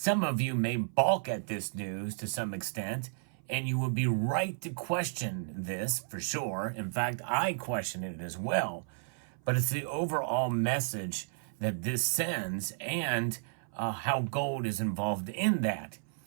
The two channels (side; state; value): left; silent; 56 dB below the other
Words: of you may balk at this news to some extent, and you would be right to question this for sure. In fact, I question it as well. But it's the overall message that this sends and how gold is involved in that,